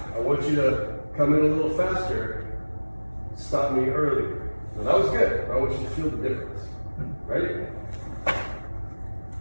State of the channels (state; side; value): inverted; both; correlation -1.00